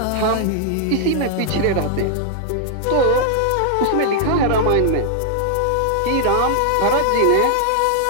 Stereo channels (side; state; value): both; different; correlation 0.00